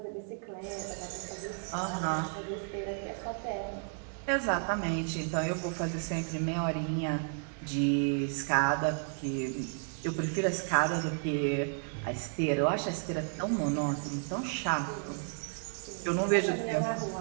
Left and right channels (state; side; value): silent; left; 56 dB below the other